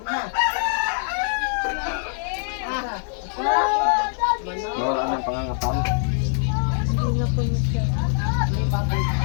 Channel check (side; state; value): right; silent; digital silence